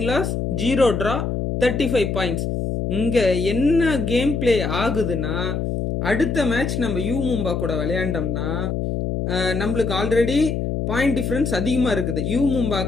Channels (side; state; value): left; noise; hum, 1 dB below the sound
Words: loss 0 draw 35 பாயிண்ட்ஸ். இங்கே என்ன கேம் பிளே ஆகுதுன்னா அடுத்த மேட்ச் நம்ம யூ மும்பா கூட விளையாண்டோம்னா நம்மளுக்கு ஆல்ரெடி பாயிண்ட் டிஃப்ரென்ஸ் அதிகமாக இருக்குது. யூ மும்பா